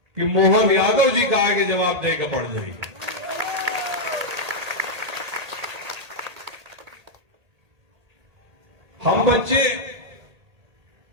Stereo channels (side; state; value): left; late; 1.8 ms